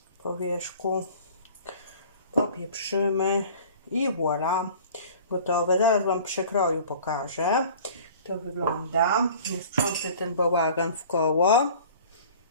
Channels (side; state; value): both; inverted; correlation -0.46